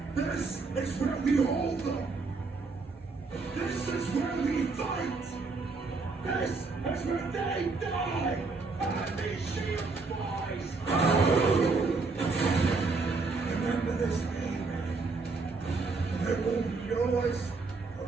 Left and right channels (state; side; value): quieter; left; 4.0 dB